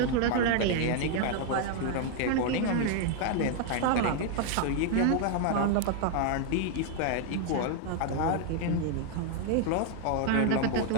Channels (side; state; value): both; different; correlation 0.00